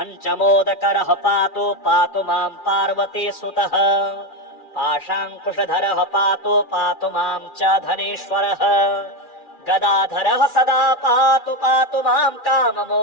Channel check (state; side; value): late; right; 2.4 ms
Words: पातु मां पार्वतीसुतः पाशाङ्कुशधरः पातु मां च धनेश्वरः गदाधरः सदा पातु मां